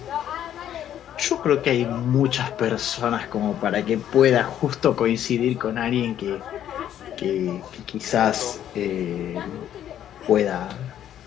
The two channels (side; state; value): right; quieter; 10.8 dB